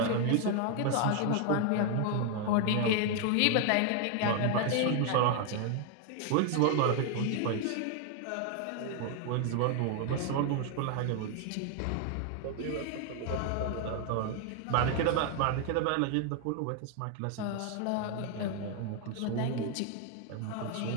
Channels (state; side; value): different; both; correlation 0.01